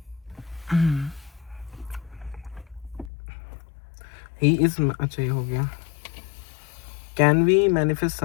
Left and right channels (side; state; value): right; drops out; at 3.1 s